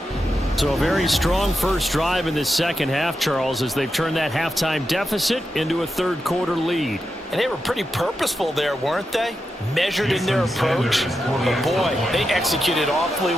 So a very strong first drive in this 2nd half, Charles, as they've turned that halftime deficit into a 3rd quarter lead. And they were pretty purposeful there, weren't they? Measured in their approach. But boy, they executed awfully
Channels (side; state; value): both; normal; correlation 0.88